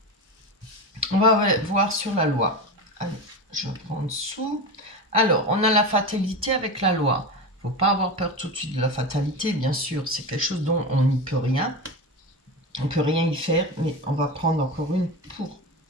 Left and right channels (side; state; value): both; normal; correlation 0.23